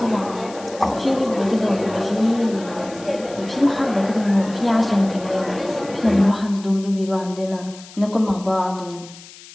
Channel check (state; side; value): noise; left; hiss, 19 dB below the sound